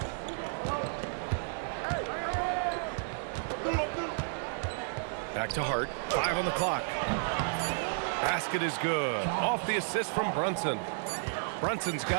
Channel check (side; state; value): left; silent; digital silence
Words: Back to Hart. 5 on the clock. Basket is good. Off the assist from Brunson. Brunson's